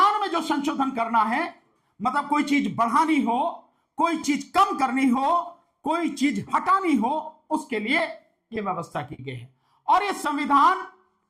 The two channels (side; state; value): both; identical; correlation 1.00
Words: में जो संशोधन करना है, मतलब कोई चीज बढ़ानी हो, कोई चीज कम करनी हो, कोई चीज हटानी हो, उसके लिए यह व्यवस्था की गई है। और यह संविधान